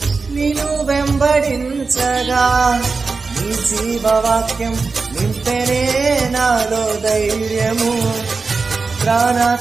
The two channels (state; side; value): quieter; left; 4.4 dB